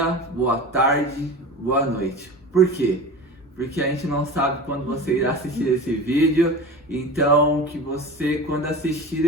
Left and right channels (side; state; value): both; normal; correlation 0.32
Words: boa tarde, boa noite. Por quê? Porque a gente não sabe quando você irá assistir esse vídeo. Então, que você, quando assistir